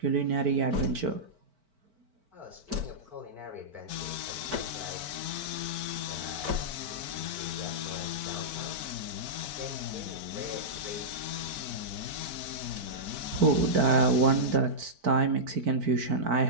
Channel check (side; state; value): left; late; 4.5 ms